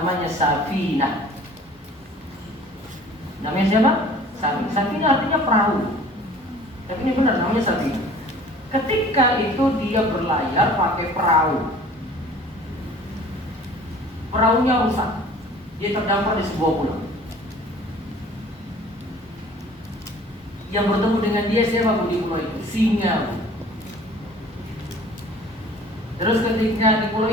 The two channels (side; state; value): both; normal; correlation 0.48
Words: Safinah. Namanya siapa? Safinah. Safinah artinya perahu. Tapi ini benar namanya Safinah. Ketika itu dia berlayar pakai perahu, perahunya rusak. Dia terdampar di sebuah pulau. Yang bertemu dengan dia siapa Bu di pulau itu? Singa, Bu. Terus ketika di pulau